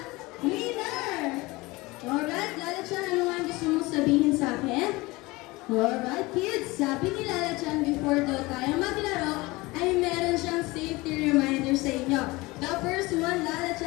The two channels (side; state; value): right; quieter; 22.1 dB